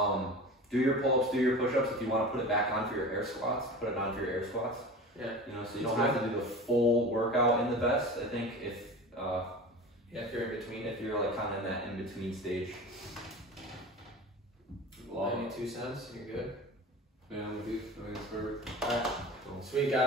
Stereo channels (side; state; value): both; normal; correlation 0.34